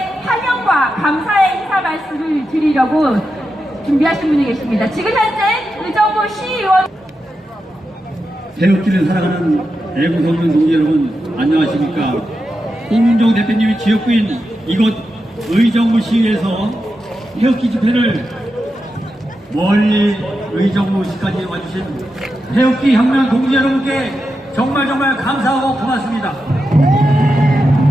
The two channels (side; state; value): both; normal; correlation 0.88